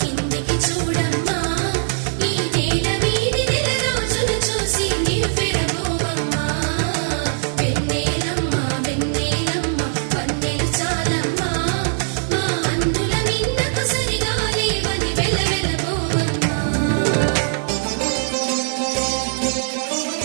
కిందికి చూడమ్మా, ఈ నేల వీధి నెల రోజులు చూసి నివ్వెరబోవమ్మా. వెన్నెలమ్మ వెన్నెలమ్మ వన్నెలు చాలమ్మా, మా అందుల మిన్నకు సరిగా లేవని వెలవెలబోవమ్మా.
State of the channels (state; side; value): silent; left; 65 dB below the other